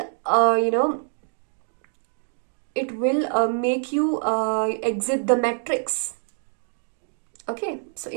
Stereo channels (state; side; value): silent; left; 57 dB below the other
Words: make you exit the matrix. Okay, so